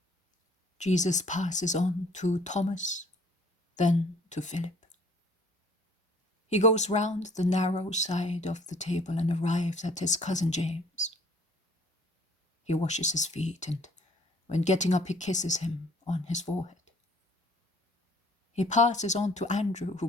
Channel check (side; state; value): both; normal; correlation 0.55